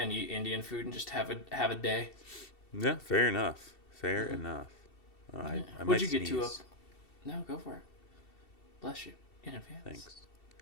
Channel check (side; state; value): right; late; 2.7 ms